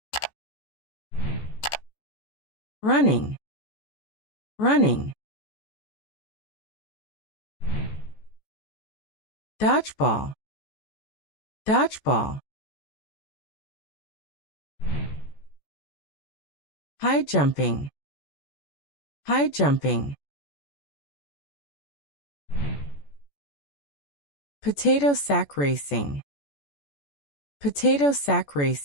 Running. Running. Dodgeball. Dodgeball. High jumping. High jumping. Potato sack racing. Potato sack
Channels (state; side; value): late; right; 14 ms